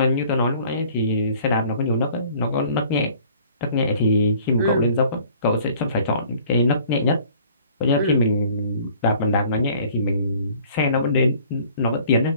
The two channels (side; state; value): both; inverted; correlation -0.54